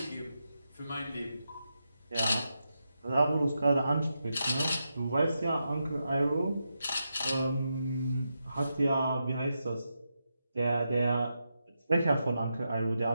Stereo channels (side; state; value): both; inverted; correlation -0.86